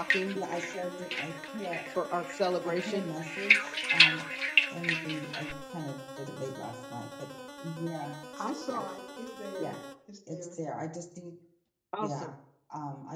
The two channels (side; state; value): both; identical; correlation 1.00